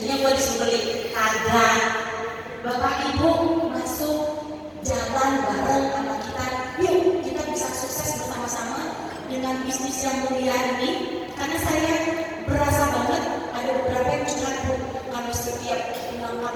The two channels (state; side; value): identical; both; correlation 1.00